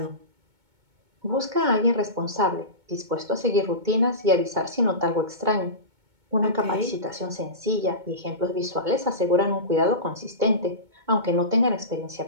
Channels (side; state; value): left; late; 2.2 ms